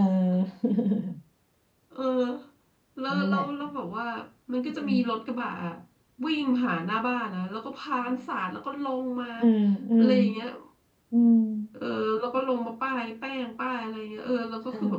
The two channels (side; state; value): both; identical; correlation 1.00